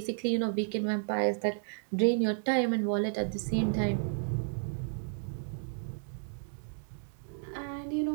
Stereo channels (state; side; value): silent; left; digital silence